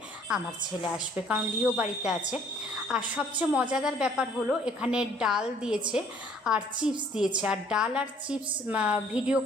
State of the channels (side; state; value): both; normal; correlation 0.59